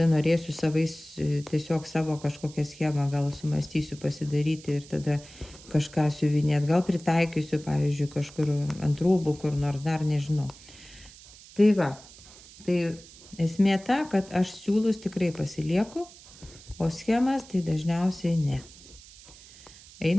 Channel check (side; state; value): right; noise; hiss, 20 dB below the sound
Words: norėsiu tiesiog savo kažkokią schemą, gal sumastysiu pasidaryti ir tada kažką siuvinėti, gal pritaikysiu, pavyzdžiui, kažkur ant rūbų, kur nors dar nežinau. Tai va, tai esmė ta, kad aš siūlus tikrai pasilieku, o schemas tai dažniausiai ne.